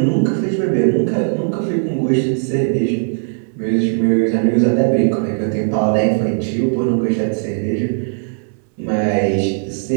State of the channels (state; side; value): silent; left; 63 dB below the other